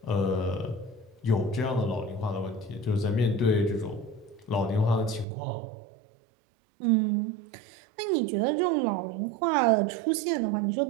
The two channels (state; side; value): drops out; left; at 5.2 s